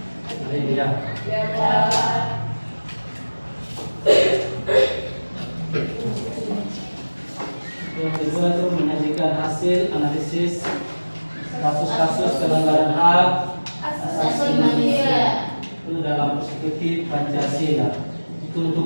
hari ini ya. Yang kedua itu menyajikan hasil analisis kasus-kasus pelanggaran hak asasi manusia itu dalam perspektif Pancasila. Itu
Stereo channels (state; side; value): inverted; both; correlation -1.00